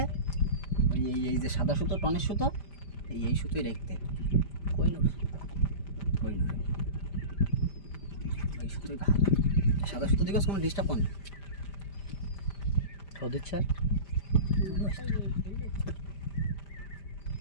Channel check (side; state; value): right; late; 5.1 ms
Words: ওই এই যে সাদা সুতো টনের সুতো, এই সুতোই রাখতে হবে। কই না কই না, এই সুতোই ভালো। সাদা সুতো দিকে কোনো ডিস্টার্ব করে না। তো দিচ্ছে আর